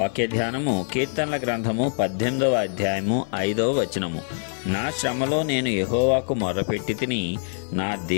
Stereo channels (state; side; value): silent; right; digital silence